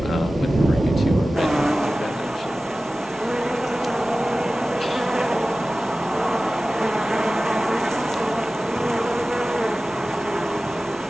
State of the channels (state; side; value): normal; both; correlation 0.96